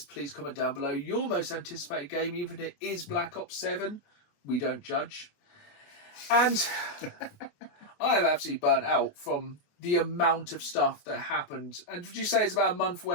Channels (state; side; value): late; right; 29 ms